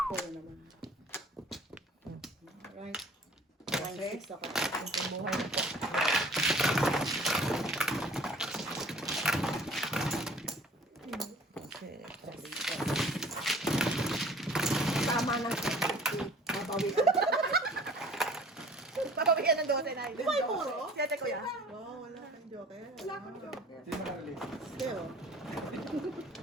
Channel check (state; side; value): normal; both; correlation 0.50